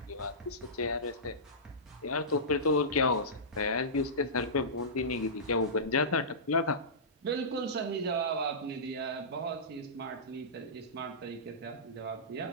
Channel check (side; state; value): both; normal; correlation -0.18